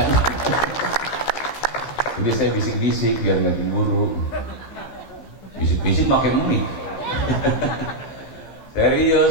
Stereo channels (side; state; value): right; late; 15 ms